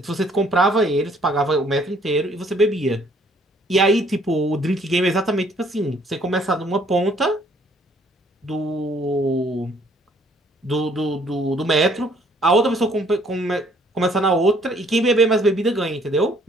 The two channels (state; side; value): normal; both; correlation 0.62